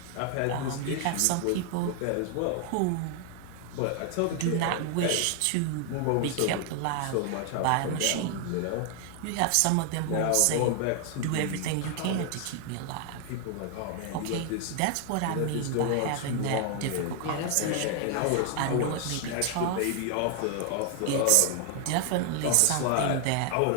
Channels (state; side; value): different; both; correlation 0.00